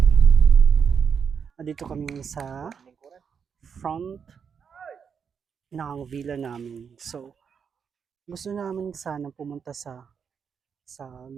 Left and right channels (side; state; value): left; quieter; 6.7 dB